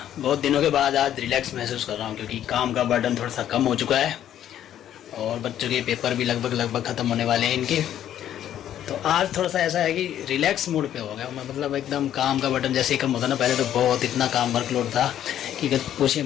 बहुत दिनों के बाद आज रिलैक्स महसूस कर रहा हूँ क्योंकि काम का बर्डन थोड़ा सा कम हो चुका है और बच्चों के पेपर भी लगभग ख़त्म होने वाले हैं इनके। तो आज थोड़ा सा ऐसा है कि रिलैक्स मूड पे हो गया, मतलब एकदम काम का बर्डन जैसे ही कम होता ना। पहले तो बहुत इतना काम वर्कलोड था कि पूछिए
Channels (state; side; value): quieter; right; 11.0 dB